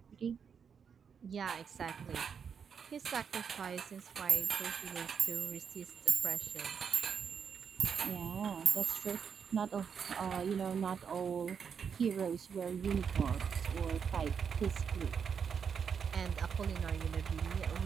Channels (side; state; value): left; quieter; 6.8 dB